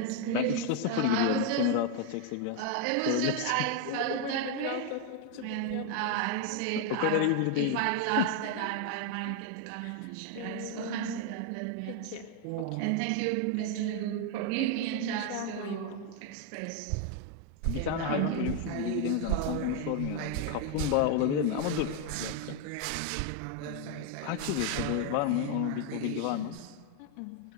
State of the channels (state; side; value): different; both; correlation 0.01